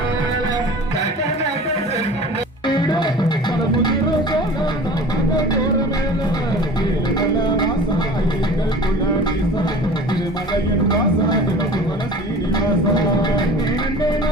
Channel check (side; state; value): both; normal; correlation 0.41